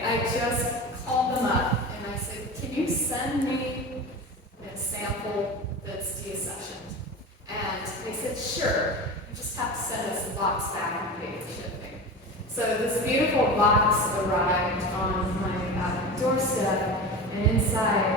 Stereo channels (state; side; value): normal; both; correlation 0.29